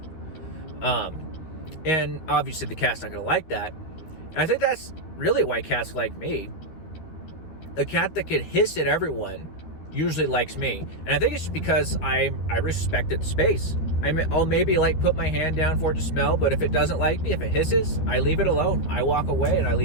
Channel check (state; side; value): late; right; 13 ms